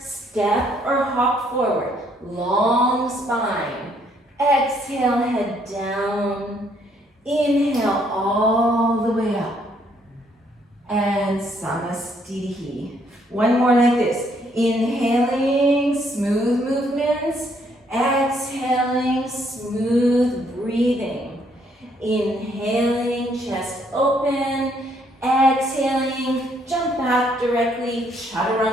or hop forward. Long spine. Exhale, head down. Inhale all the way up. And Samastitihi. One more like this. Inhaling, smooth movements. Exhaling, smooth breathing. Inhaling, chest open. Exhaling, jump back directly,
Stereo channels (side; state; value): both; normal; correlation 0.69